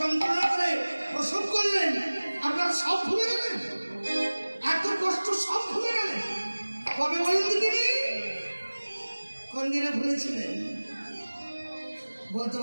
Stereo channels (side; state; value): both; inverted; correlation -1.00